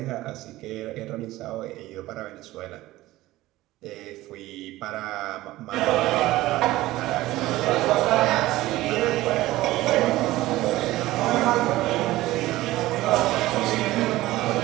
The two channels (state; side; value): quieter; left; 17.2 dB